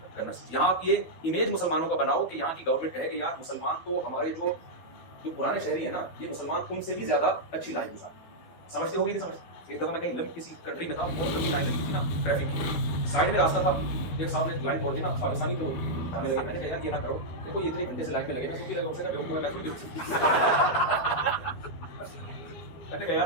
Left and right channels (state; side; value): late; right; 12 ms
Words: کرنا سیکھو. یہاں یہ امیج مسلمانوں کا بناؤ کہ یہاں کی گورنمنٹ کہے کہ یار مسلمان تو ہمارے جو پرانے شہری ہیں نا، یہ مسلمان تم سے بھی زیادہ اچھی لائف گزارے. سمجھتے ہوگی نہیں سمجھتے؟ ایک دفعہ میں کہیں کسی کنٹری میں تھا، بہت لمبی لائن لگی تھی نا ٹریفک کی، سائڈ میں راستہ تھا، ایک صاحب نے لائن توڑ دی نا، پاکستانی تھے وہ، ہمیں لگے، میں نے کہا یار یہ نہ کرو، دیکھو یہ اتنے گھنٹے سے لائن میں لگے نا، میں نے کہا